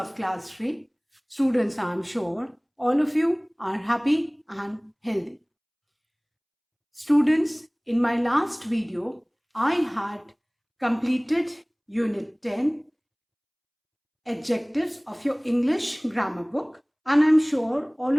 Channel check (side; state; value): both; identical; correlation 1.00